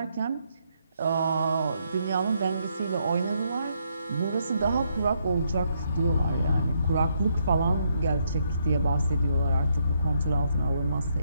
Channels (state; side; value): inverted; both; correlation -0.75